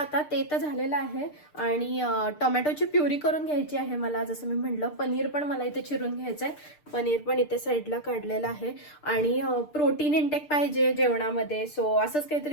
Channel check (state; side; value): late; right; 6.7 ms